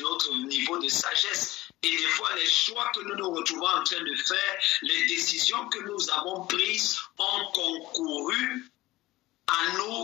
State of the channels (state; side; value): quieter; right; 18.2 dB